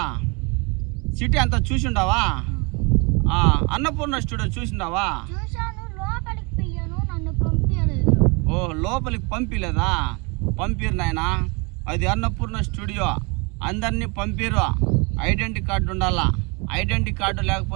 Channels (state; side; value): quieter; left; 30.3 dB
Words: సిటీ అంతా చూసిండావా? అన్నపూర్ణ స్టూడియో చూసిండావా? ఓ లోపలికి పంపిలేదా? పంపిరు నాయనా, అది అన్నపూర్ణ స్టూడియో, అందరినీ పంపిరు. ఐడెంటిటీ కార్డు ఉండాలా, ఐడెంటిటీ కార్డు